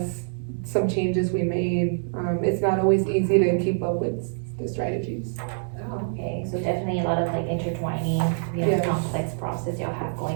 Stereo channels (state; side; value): silent; left; digital silence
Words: some changes we made. It's not always easy to keep up with the strategies. Oh, okay, so definitely a lot of like intertwining, Yes. complex process y'all have